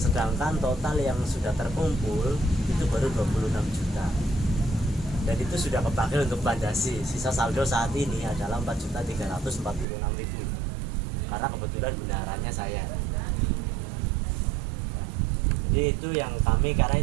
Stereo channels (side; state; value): left; drops out; at 9.9 s